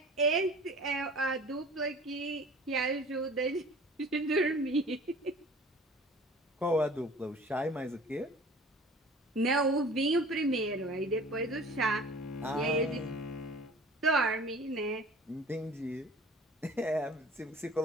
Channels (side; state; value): both; normal; correlation 0.45